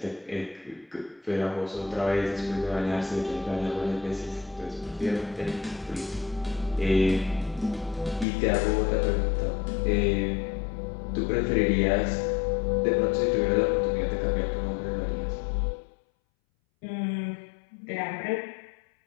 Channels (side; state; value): right; drops out; at 8.2 s